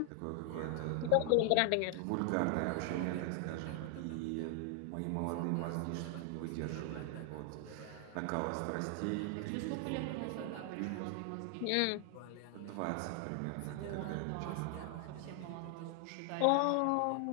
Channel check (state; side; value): different; both; correlation 0.00